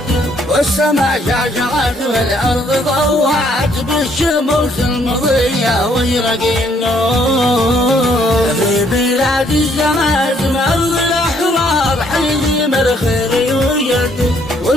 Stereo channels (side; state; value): both; normal; correlation 0.67